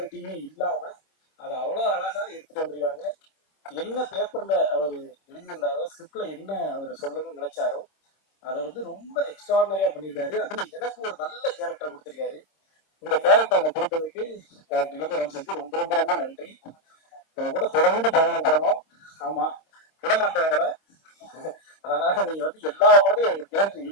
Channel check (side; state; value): right; late; 26 ms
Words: இல்லாம அதை அவ்வளவு அழகா எடுத்துட்டு வந்துருக்காங்க என்ன பேப்பர்ல அவர் எழுதியிருந்தாரோ ஸ்கிரிப்ட்ல என்ன அவர் சொல்லணும்னு நினைச்சாரோ அதை வந்து ரொம்ப எக்ஸ்ட்ராடினரியா பண்ணியிருக்காரு அதுல எனக்கு ஒரு நல்ல கேரக்டர் கொடுத்திருக்காரு இந்த கேரக்டர் அவங்க கொடுத்ததுக்கு வந்து ரொம்ப ரொம்ப ரொம்ப நன்றி கூட தொடர்ந்து பயணம் பண்ணணும் ஆமா விட மாட்டாங்கள அதனால நீங்க வந்து எல்லா படத்தையும் எங்க பேருக்கு